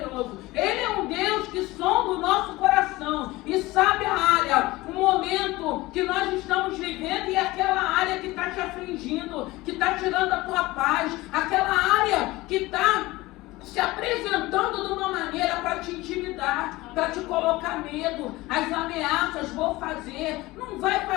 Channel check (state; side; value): quieter; right; 19.8 dB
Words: Ele é um Deus que sonda o nosso coração e sabe a área, o momento que nós estamos vivendo e aquela área que está te afligindo, que está tirando a tua paz, aquela área que está se apresentando de uma maneira para te intimidar, para te colocar medo, as ameaças: vou fazer, não vai